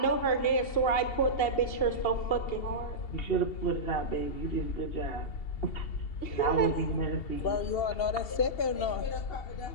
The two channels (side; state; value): right; late; 2.7 ms